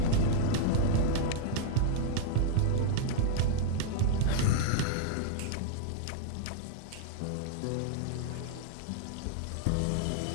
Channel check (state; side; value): different; both; correlation -0.01